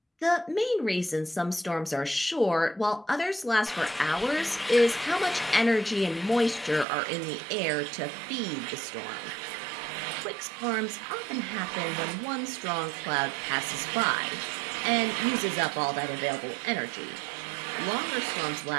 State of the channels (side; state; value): left; drops out; at 6.9 s